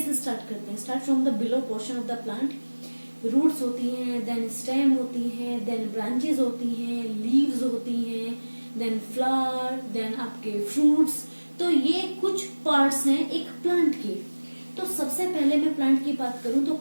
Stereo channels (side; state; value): both; inverted; correlation -1.00